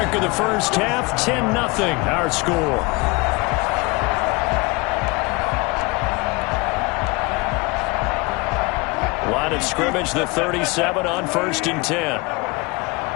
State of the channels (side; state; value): right; quieter; 25.7 dB